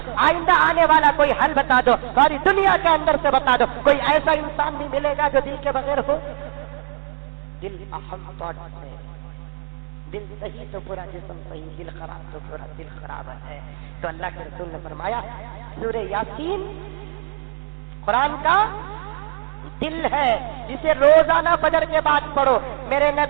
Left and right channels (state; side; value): silent; left; digital silence